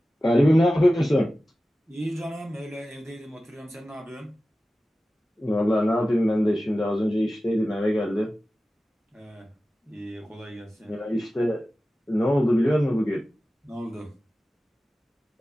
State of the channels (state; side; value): normal; both; correlation 0.95